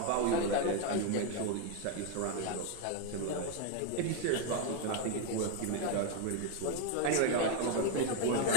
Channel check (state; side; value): different; both; correlation 0.01